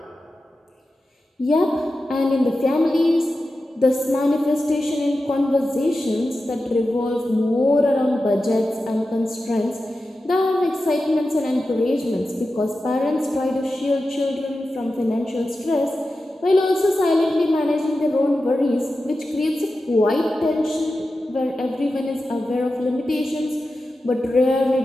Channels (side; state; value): both; normal; correlation 0.92